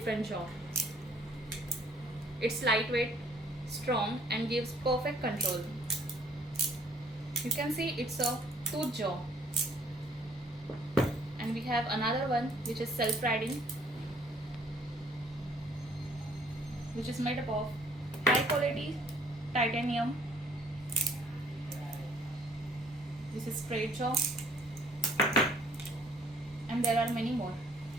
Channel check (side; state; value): both; normal; correlation 0.60